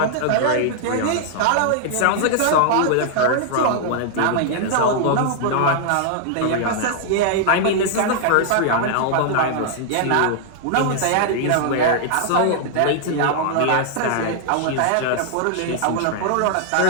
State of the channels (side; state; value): both; different; correlation -0.01